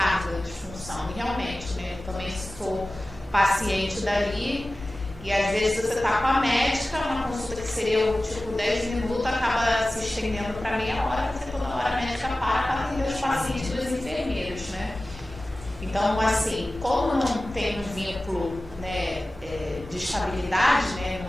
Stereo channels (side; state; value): both; normal; correlation 0.96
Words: de função, e realmente, né, eu também sou paciente dali, e às vezes você está com a médica, uma consulta que seria tipo 10 minutos, acaba se estendendo para meia hora, porque toda hora a médica para atender os pacientes dos enfermeiros, né. Então, assim, como não tem um vínculo, né, de estabilidade, né,